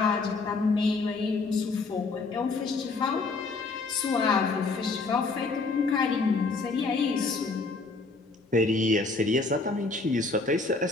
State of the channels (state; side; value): quieter; right; 3.8 dB